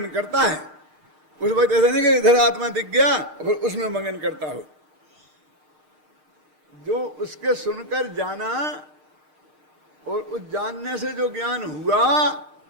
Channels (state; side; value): late; left; 6.5 ms